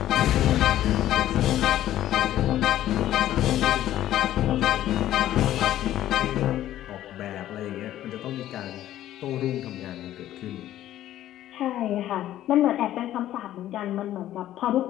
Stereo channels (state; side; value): quieter; right; 13.1 dB